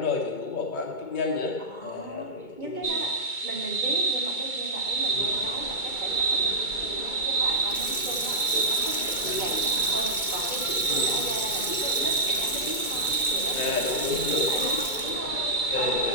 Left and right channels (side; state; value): right; late; 2.2 ms